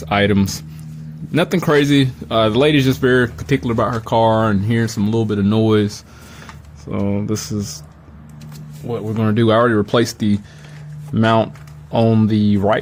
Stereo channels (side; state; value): both; identical; correlation 1.00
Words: items. Nothing crazy. The lady's just very particular about her car and hearing some little bit of noise. So this is what we're going to do. I already replaced the mount on the